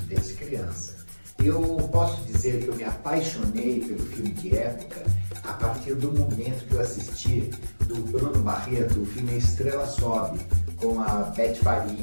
desde criança. Eu posso dizer que eu me apaixonei pelo filme de época a partir do momento que eu assisti do Bruno Barreto, o filme Estrela Sobe, com a Beth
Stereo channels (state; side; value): inverted; both; correlation -1.00